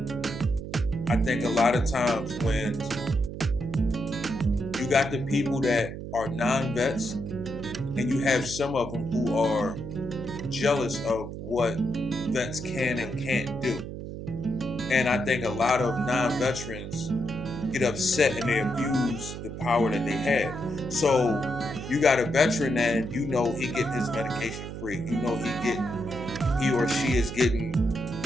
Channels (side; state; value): right; noise; hum, 8 dB below the sound